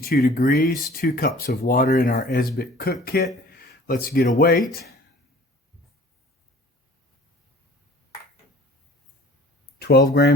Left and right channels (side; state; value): both; normal; correlation 0.48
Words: degrees, 2 cups of water in our Esbit cook kit. Let's get a weight. 12